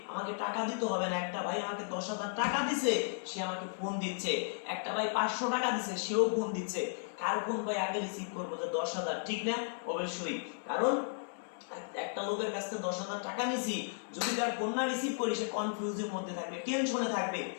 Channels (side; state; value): right; silent; 55 dB below the other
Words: টাকা দিতে হবে না। একটা ভাই আমাকে 10,000 টাকা দিছে, সে আমাকে ফোন দিচ্ছে। একটা ভাই 500 টাকা দিছে, সেও ফোন দিচ্ছে। কার ফোন ভাই আগে রিসিভ করবো? যে 10,000, ঠিক না? অবশ্যই, কারণ একটা লোকের কাছ থেকে 10,000 টাকা নিছি, যদি তার ফোন না রিসিভ করি সে কনফিউজের মধ্যে থাকবে, টেনশনে থাকবে।